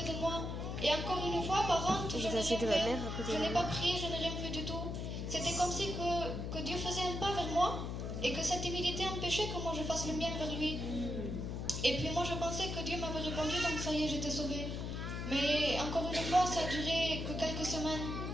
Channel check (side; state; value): left; noise; hum, 4 dB below the sound